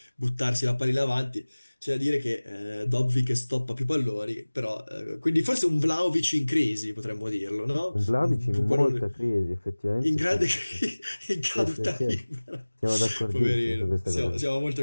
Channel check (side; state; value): both; inverted; correlation -1.00